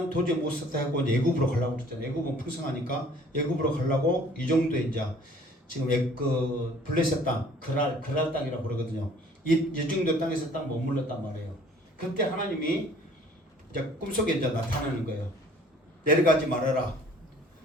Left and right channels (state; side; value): normal; both; correlation 0.54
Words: 도저히 못 살다 하고 애굽으로 가려고 그랬잖아요. 애굽은 풍성하니까 애굽으로 가려고 이 정도에 이제 지금 그 블레셋 땅, 그랄 땅이라고 그러거든요. 이 정도 땅에서 딱 머물렀단 말이에요. 그때 하나님이 이제 꿈속에 이제 나타나는 거예요. 내려가지 말아라.